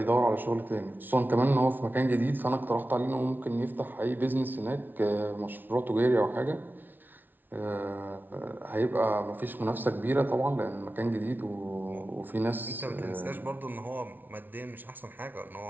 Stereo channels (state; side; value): late; left; 0.088 ms